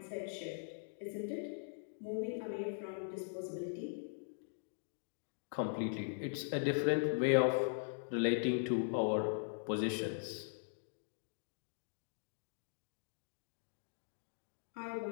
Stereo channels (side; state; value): right; silent; digital silence